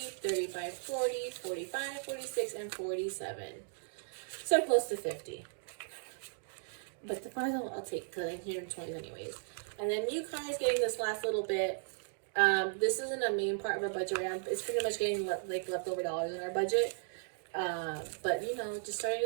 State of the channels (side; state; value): left; silent; digital silence